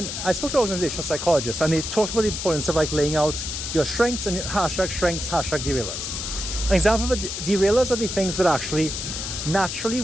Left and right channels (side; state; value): left; noise; hiss, 5 dB below the sound